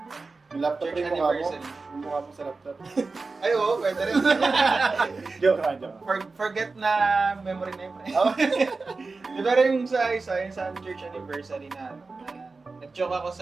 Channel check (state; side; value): quieter; left; 3.9 dB